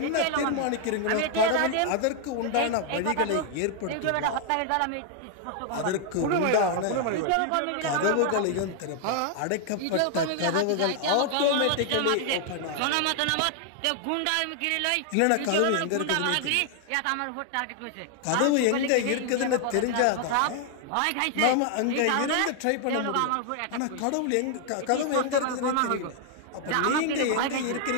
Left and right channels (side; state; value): both; different; correlation 0.00